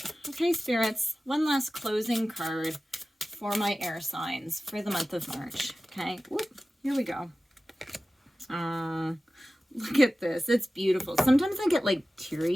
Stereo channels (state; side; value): normal; both; correlation 0.96